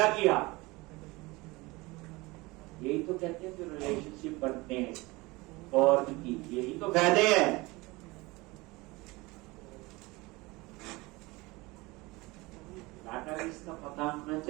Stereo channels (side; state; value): left; quieter; 22.8 dB